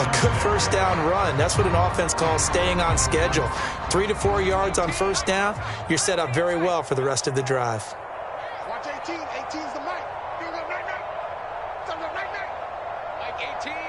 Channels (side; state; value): both; identical; correlation 1.00